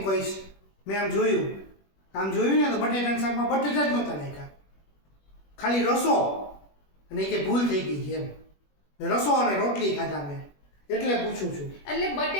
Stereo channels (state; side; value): late; right; 21 ms